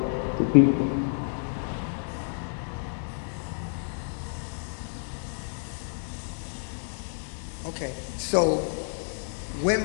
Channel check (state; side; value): silent; right; digital silence